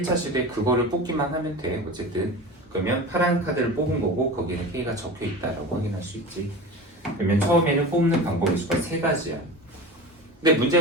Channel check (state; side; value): normal; both; correlation 0.32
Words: 시도에 그거를 뽑기만 하면 돼. 어쨌든 그러면 파란 카드를 뽑은 거고 거기에는 K가 적혀있다라고 확인할 수 있지. 그러면 처음에는 뽑는 방법의 수가 3가지야. 근데